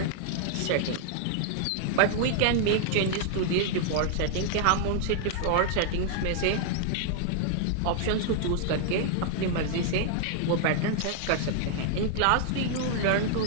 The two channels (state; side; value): different; both; correlation 0.00